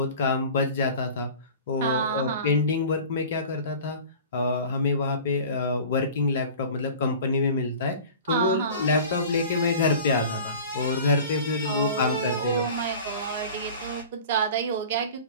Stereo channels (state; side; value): inverted; both; correlation -0.40